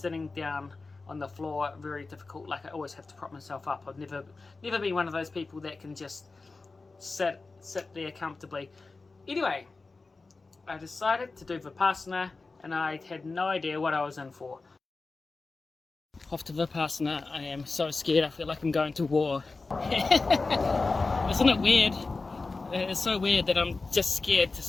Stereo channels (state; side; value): quieter; right; 3.8 dB